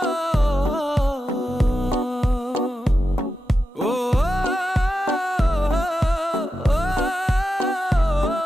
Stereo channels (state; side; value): normal; both; correlation 0.89